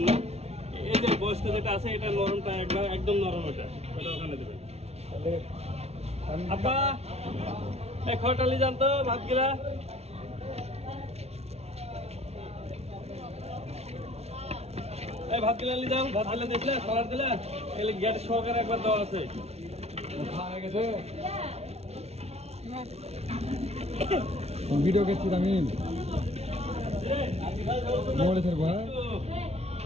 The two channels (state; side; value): late; left; 0.31 ms